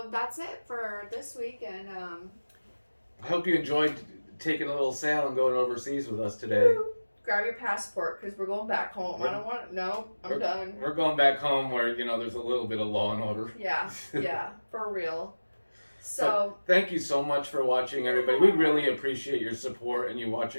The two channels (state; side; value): inverted; both; correlation -1.00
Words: that's it for this week, and I hope you enjoyed taking a little sail and going overseas with us today. Grab your passport, because we're going back home. I don't want... No, I'm done. We're going back home where, there's a little bit of law and order. Yeah, for real. So, thank you so much for watching, everybody. We really appreciate your support and you